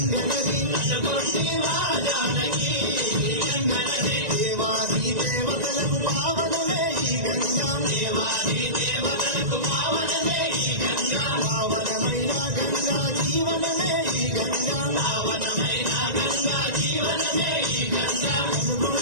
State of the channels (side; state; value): left; late; 1.9 ms